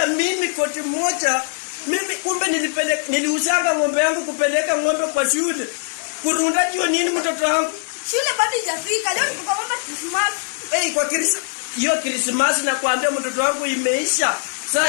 mimi koti moja. Mimi kumbe niliuzanga ng'ombe yangu kupeleka ng'ombe kwa shule. Kurunda ndio nini mtoto wangu? Shule bado haijafika. Leo tuko kwa mama Christmas. Kwa hiyo Christmas nakwambia mtoto wangu imeisha. Sasa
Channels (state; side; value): silent; right; digital silence